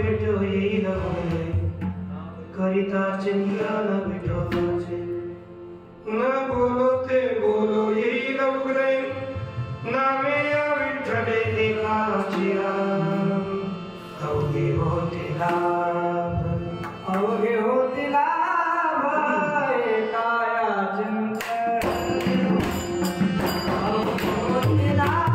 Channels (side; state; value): both; identical; correlation 1.00